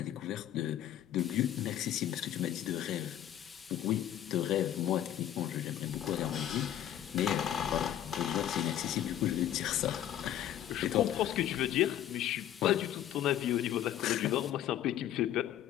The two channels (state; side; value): quieter; right; 11.5 dB